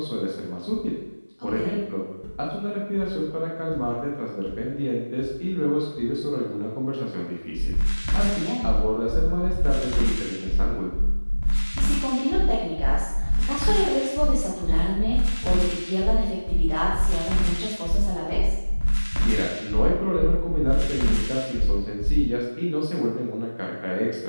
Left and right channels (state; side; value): inverted; both; correlation -1.00